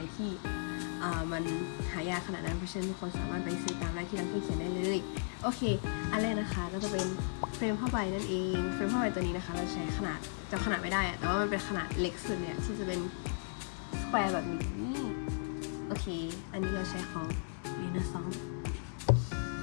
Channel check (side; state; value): right; silent; digital silence